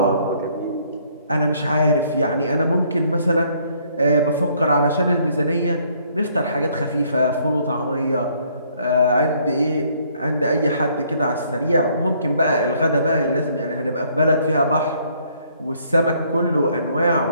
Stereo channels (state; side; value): inverted; both; correlation -0.65